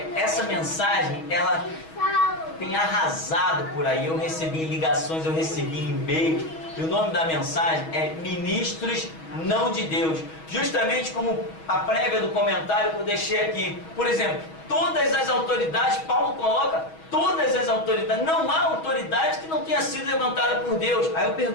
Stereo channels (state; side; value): late; right; 6.2 ms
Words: Essa mensagem, ela tem arrasado por aí. Eu recebi ligações, eu recebi e-mail. E o nome da mensagem é Ministros não de Deus. Justamente como a prévia do comentário que eu deixei aqui. Por exemplo, todas as autoridades, Paulo coloca todas as autoridades. Não há autoridade que não tenha sido levantada por Deus. Aí eu